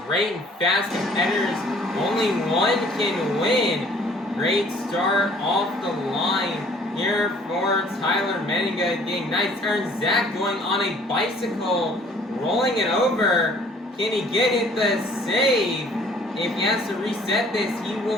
great and fast competitors. Only one can win. Great start off the line here for Tyler Menninga, getting nice turns. Zack going on a bicycle, rolling it over. Can he get it the save? If he has to reset this, he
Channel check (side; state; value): both; normal; correlation 0.56